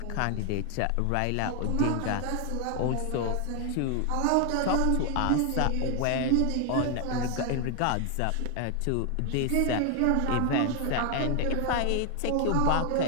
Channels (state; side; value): different; both; correlation 0.01